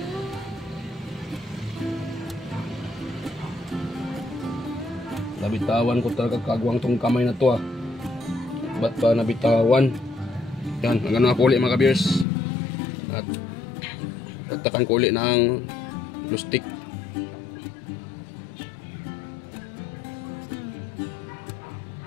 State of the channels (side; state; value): right; drops out; at 12.2 s